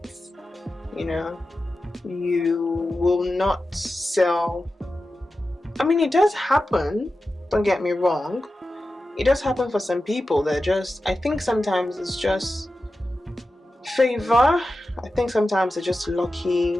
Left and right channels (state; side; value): normal; both; correlation 0.93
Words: You will not sell. I mean, it does happen, don't get me wrong. It does happen for some people. I think sometimes it's just favor. I think sometimes they're just